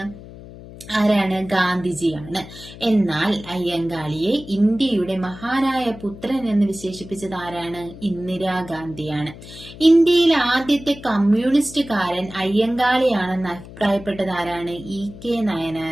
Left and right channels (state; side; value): noise; left; hum, 16 dB below the sound